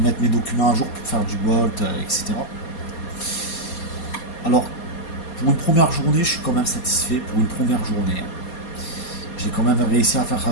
mes documents à jour pour faire du Bolt, etc. Alors, pour une première journée, je suis quand même satisfait. Pour une première journée, j'ai quand même réussi à faire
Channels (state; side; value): late; right; 4.2 ms